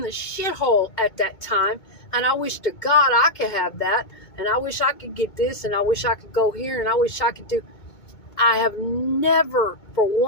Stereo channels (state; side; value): late; right; 2.2 ms